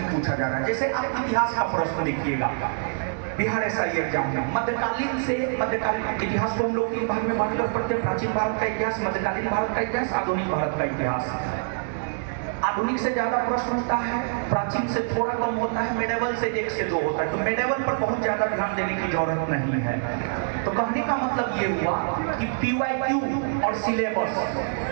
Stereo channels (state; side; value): silent; left; 61 dB below the other